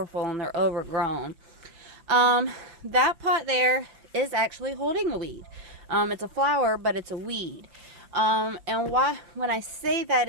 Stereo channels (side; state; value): left; late; 5.7 ms